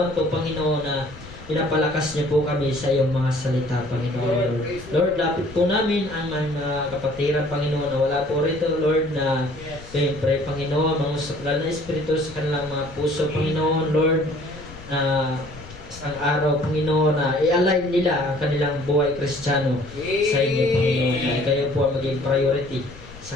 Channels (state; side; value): noise; left; rumble, 18 dB below the sound